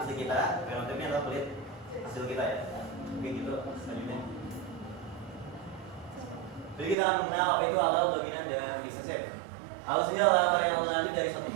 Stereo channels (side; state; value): left; drops out; at 7.0 s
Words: kita, genotipnya adalah kulit hasil kita ya. Oke gitu selanjutnya. Jadi kita akan mengenal apa itu alel dominan dan resesif. Alel sendiri adalah variabel lanjut dari satu